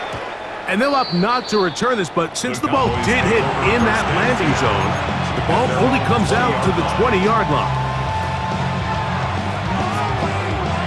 And they'll opt not to return this, but since the ball did hit in that landing zone, the ball only comes out to the 20-yard line.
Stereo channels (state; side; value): identical; both; correlation 1.00